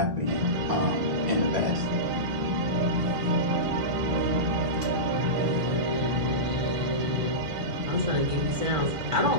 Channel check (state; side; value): late; left; 1.5 ms